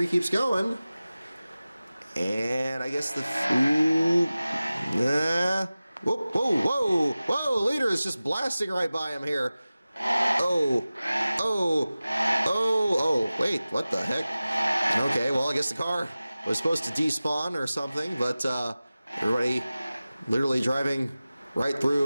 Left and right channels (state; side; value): inverted; both; correlation -0.97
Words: keeps going. And I guess the... Whoa, whoa, whoa, whoa, leader is just blasting right by him here. Oh, wait, what the heck? Okay, well, I guess the car was supposed to despawn or something, but everybody literally driving right